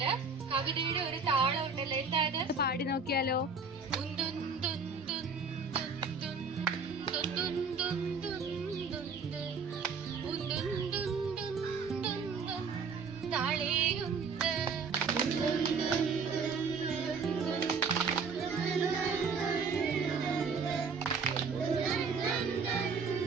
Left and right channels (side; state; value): left; quieter; 4.8 dB